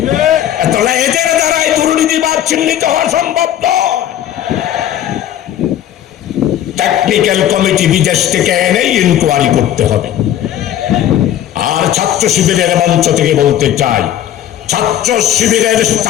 তাহলে এদের দ্বারাই দুর্নীতিবাদ চিহ্নিত হওয়া সম্ভব নয়। টেকনিক্যাল কমিটি বিদেশ থেকে এনে ইনকোয়ারি করতে হবে। আর ছাত্র শিবিরের মঞ্চ থেকে বলতে চাই, ছাত্র শিবিরের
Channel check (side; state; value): right; quieter; 11.4 dB